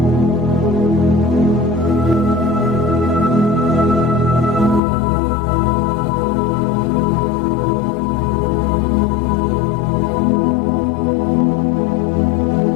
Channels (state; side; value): drops out; right; at 4.8 s